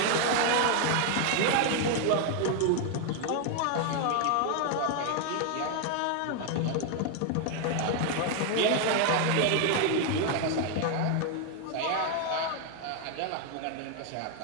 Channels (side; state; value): both; different; correlation 0.01